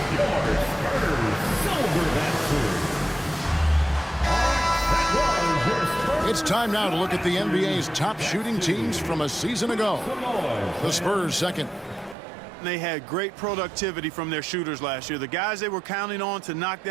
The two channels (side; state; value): left; drops out; at 12.2 s